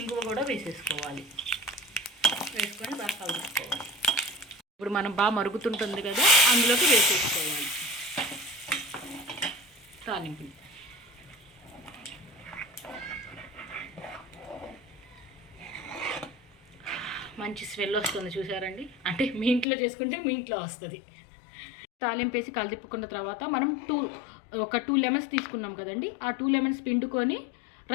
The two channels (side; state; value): right; drops out; at 19.7 s